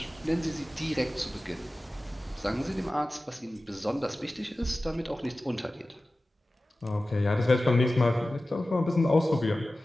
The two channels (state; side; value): normal; both; correlation 0.95